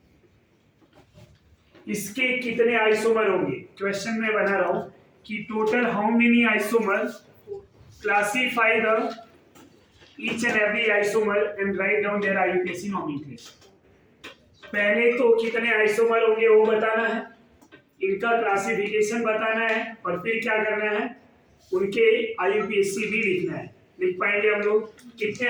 इसके कितने आइसोमर होंगे? क्वेश्चन में बना रहा हूं कि total how many isomer, classify the each and every isomer and write down their IUPAC nomenclature. पहले तो कितने आइसोमर होंगे वो बताना है, इनका क्लासिफिकेशन बताना है, और फिर क्या करना है? उनके आईयूपीएसी भी लिखना है। लिख पाएंगे हम लोग? कितने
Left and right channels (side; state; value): both; identical; correlation 1.00